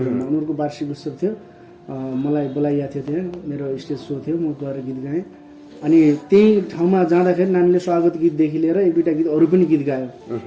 उनीहरूको वार्षिक उत्सव थियो, मलाई बोलाइएको थियो, त्यहाँ मेरो स्टेज सो थियो, म गएर गीत गाएँ। अनि त्यही ठाउँमा जाँदाखेरि नानीले स्वागत गीतदेखि लिएर 1-2टा गीत अरू पनि गीत गायो,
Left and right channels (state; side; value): identical; both; correlation 1.00